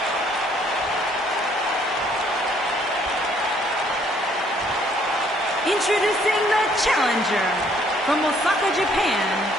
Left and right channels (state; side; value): normal; both; correlation 0.64